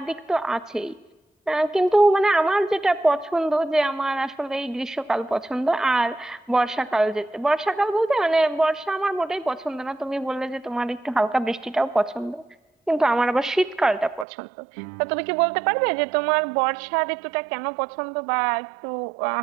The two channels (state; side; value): drops out; left; at 14.2 s